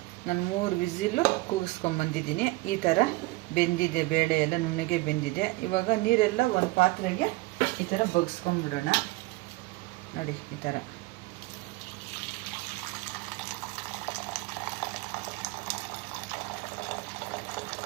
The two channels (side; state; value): left; quieter; 21.8 dB